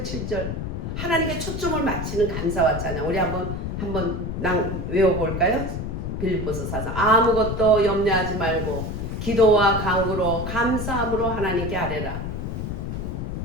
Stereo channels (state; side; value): noise; left; rumble, 4 dB below the sound